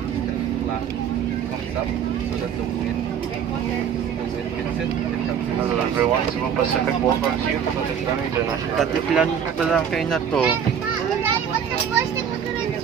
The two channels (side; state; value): left; quieter; 8.0 dB